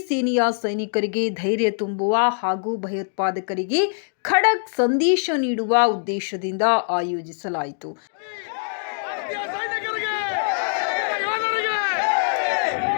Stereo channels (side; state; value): right; silent; digital silence